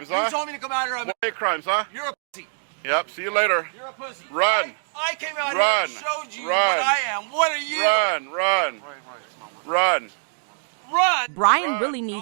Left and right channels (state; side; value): silent; left; digital silence